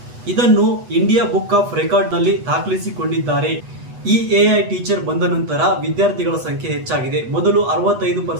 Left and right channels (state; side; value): late; left; 8.2 ms